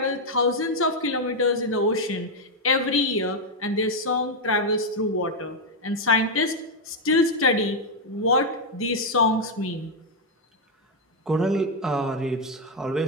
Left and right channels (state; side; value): normal; both; correlation 0.01